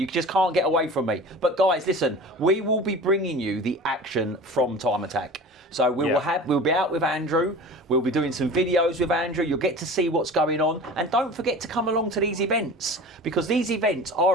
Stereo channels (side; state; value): both; normal; correlation 0.37